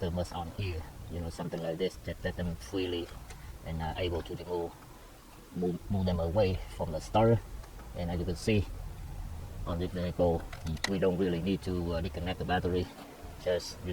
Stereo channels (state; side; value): identical; both; correlation 1.00